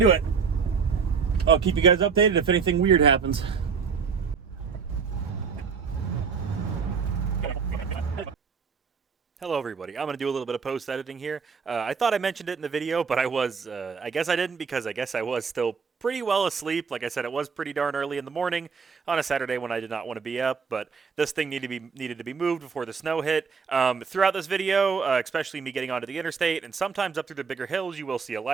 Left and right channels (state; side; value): quieter; left; 5.7 dB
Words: it. I'll keep you guys updated if anything weird happens. Hello everybody, I'm going to do a little bit of post editing here. I thought I mentioned it in the video, but I guess I didn't, because I guess I was still pretty well asleep. Like I said, it was pretty darn early in the morning on a Saturday when I did not want to be up, but this thing needed to be moved before the snow hit. Throughout this video, especially me getting onto the interstate and sometimes up through the bigger hills, you will see a